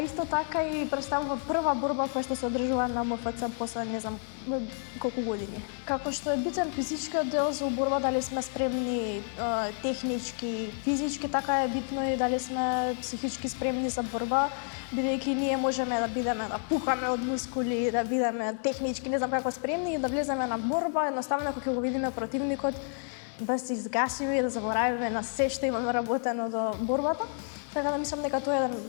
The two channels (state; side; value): silent; right; 58 dB below the other